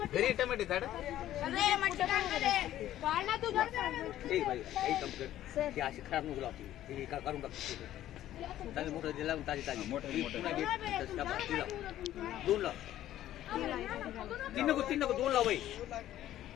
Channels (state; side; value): quieter; right; 13.0 dB